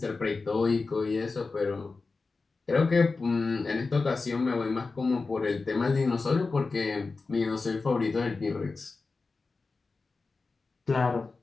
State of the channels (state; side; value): quieter; right; 4.0 dB